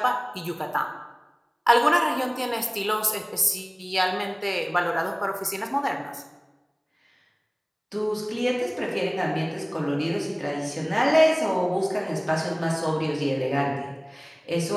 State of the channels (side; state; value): both; identical; correlation 1.00